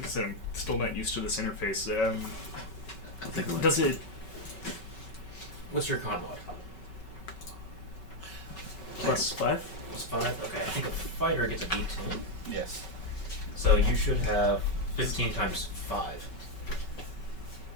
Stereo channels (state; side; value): late; right; 5.3 ms